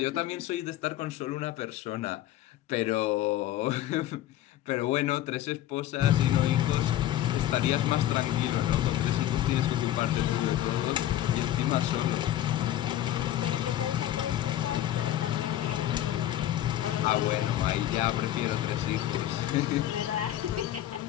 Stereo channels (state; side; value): quieter; right; 13.0 dB